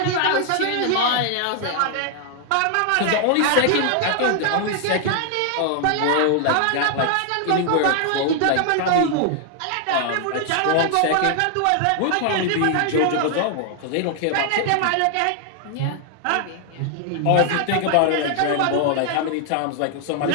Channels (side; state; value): both; different; correlation 0.00